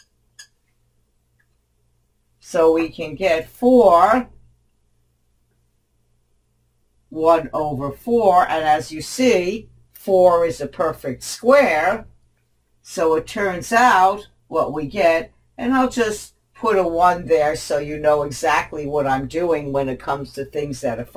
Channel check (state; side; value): identical; both; correlation 1.00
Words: So we can get 4, 1 over 4, and as you see, 4 is a perfect square. So it turns out what we get, and I'll just put a 1 there so you know exactly what I'm doing when it comes to things that are